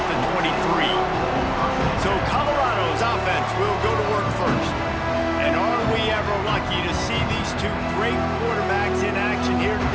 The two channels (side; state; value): both; identical; correlation 1.00